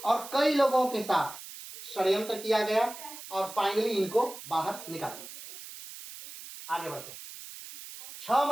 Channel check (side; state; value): right; noise; hiss, 13 dB below the sound